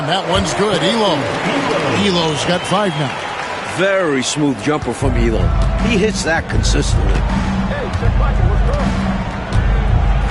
that one's good. Elo's got 5 now. Very smooth jumper from Elo. He hits that consistently.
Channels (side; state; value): both; identical; correlation 1.00